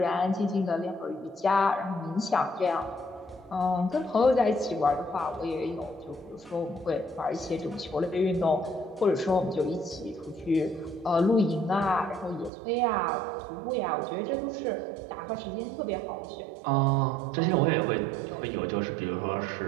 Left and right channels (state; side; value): drops out; left; at 12.5 s